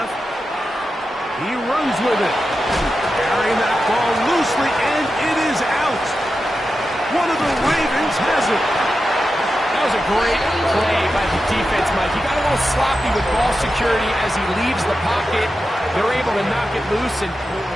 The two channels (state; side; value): normal; both; correlation 0.90